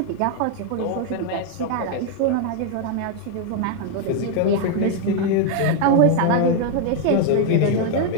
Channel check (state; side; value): different; both; correlation 0.00